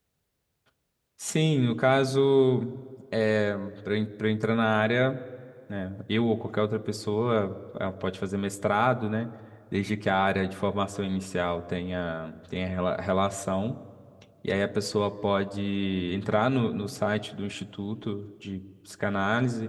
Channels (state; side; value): identical; both; correlation 1.00